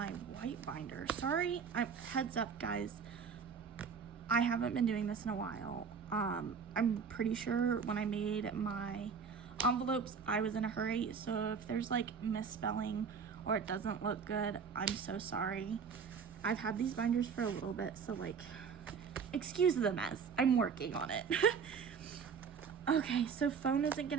white binder. Sorry, heads up guys, I haven't been doing this in a while. I'm pretty sure when I made my envelopes, I was in a hurry. So if there's like misspelling or it doesn't look good, I'm so sorry. I've had these binders for a little bit, so like, excuse the mess. I'm working on it. Okay, so phone isn't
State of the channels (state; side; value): quieter; left; 6.1 dB